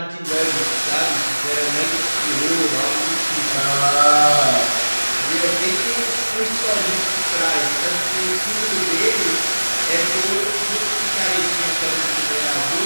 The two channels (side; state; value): both; inverted; correlation -1.00